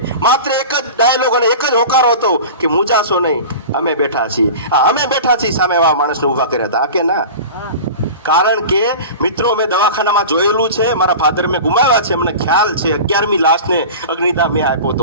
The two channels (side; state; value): both; inverted; correlation -0.34